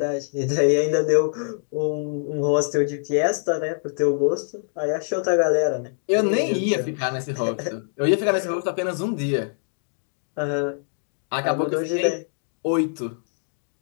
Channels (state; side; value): silent; right; 63 dB below the other